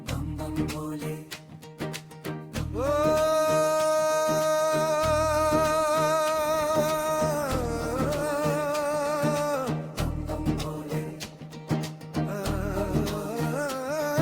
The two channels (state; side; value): identical; both; correlation 1.00